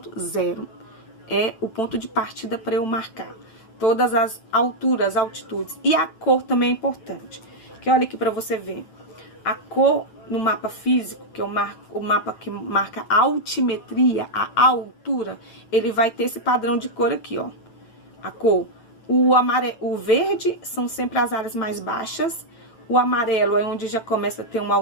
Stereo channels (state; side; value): late; right; 9.1 ms